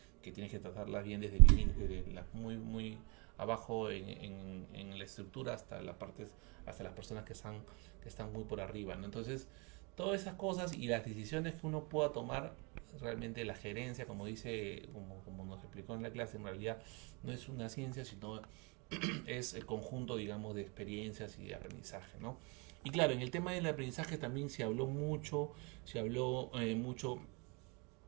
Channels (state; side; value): quieter; left; 30.7 dB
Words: que tienes que tratarlas bien desde las muy abajo en la estructura hasta hasta las personas que están muy por arriba, ¿no? Entonces, todas esas cosas y las decisiones que uno pueda tomar, realmente la gerencia, como como nos explicó en la clase, en realidad no es una ciencia, sino es el conjunto, digamos, de experiencias y de aprendizaje, ¿no? Y claro, en el tema del aprendizaje también se habló mucho